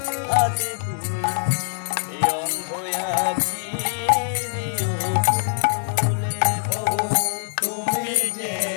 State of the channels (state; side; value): silent; right; 60 dB below the other